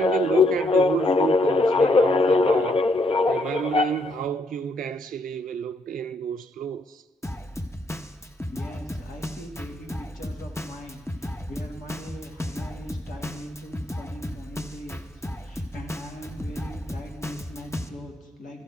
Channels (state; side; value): normal; both; correlation 0.73